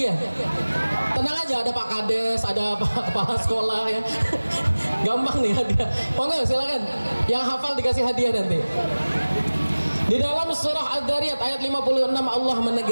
Tenang aja, ada Pak Kades, ada Pak Kepala Sekolah ya. Gampang nih hadiah. Monggo silakan. Yang hafal dikasih hadiah nanti. Di dalam surah Az-Zariyat ayat 56 Allah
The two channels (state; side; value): inverted; both; correlation -1.00